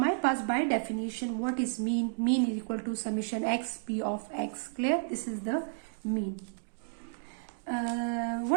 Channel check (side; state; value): left; silent; digital silence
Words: पास by definition what is mean? Mean is equal to summation x p of x. Clear? This is the mean.